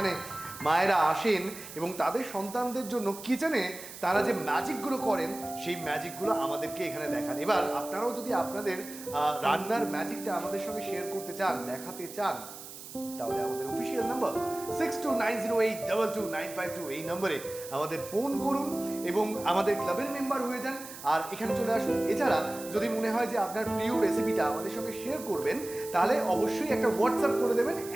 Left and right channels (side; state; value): right; noise; hiss, 13 dB below the sound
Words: মায়েরা আসেন এবং তাদের সন্তানদের জন্য কিচেনে তারা যে ম্যাজিকগুলো করেন সেই ম্যাজিকগুলো আমাদেরকে এখানে দেখান। এবার আপনারাও যদি আপনাদের রান্নার ম্যাজিকটা আমাদের সঙ্গে শেয়ার করতে চান, দেখাতে চান, তাহলে আমাদের অফিসিয়াল নাম্বার 6290822952 এই নম্বরে আমাদের ফোন করুন এবং আমাদের ক্লাবের মেম্বার হয়ে যান আর এখানে চলে আসুন। এছাড়া যদি মনে হয় যে আপনার প্রিয় রেসিপিটা আমাদের সঙ্গে শেয়ার করবেন, তাহলে অবশ্যই একটা হোয়াটসঅ্যাপ করে দেবেন